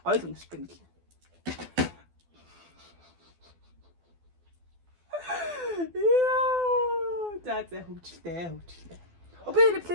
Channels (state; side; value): late; left; 12 ms